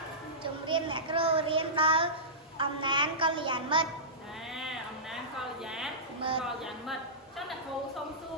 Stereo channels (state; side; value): normal; both; correlation -0.18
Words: ជំរាបអ្នកគ្រូរៀនដល់អំណាចកល្យាណមិត្តអំណាចកល្យាណមិត្តចឹងអ្នកគ្រូសុំសួ